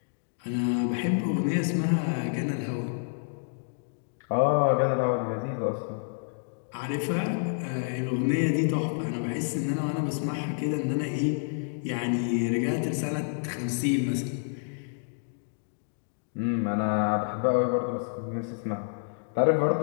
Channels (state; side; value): silent; right; digital silence